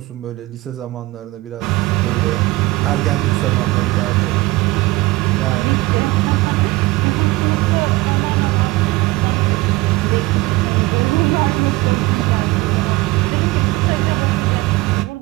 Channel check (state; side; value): quieter; left; 20.1 dB